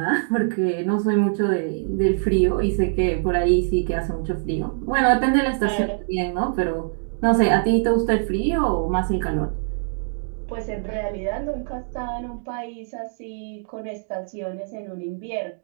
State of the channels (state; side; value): silent; left; digital silence